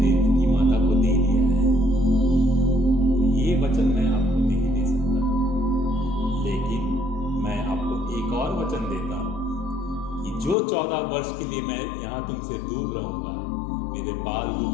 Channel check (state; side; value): drops out; right; at 10.6 s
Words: देवकी माता को दे दिया है, तो ये वचन मैं आपको नहीं दे सकता, लेकिन मैं आपको एक और वचन देता हूं कि जो 14 वर्ष के लिए मैं यहाँ तुमसे दूर रहूंगा, मेरे बाल रूप